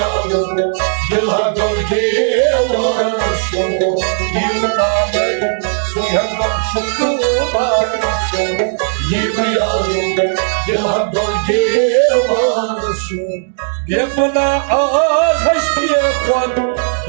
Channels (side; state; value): left; silent; digital silence